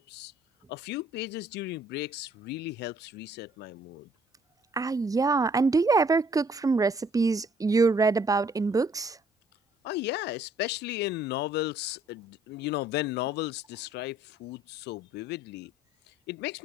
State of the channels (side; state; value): both; normal; correlation 0.62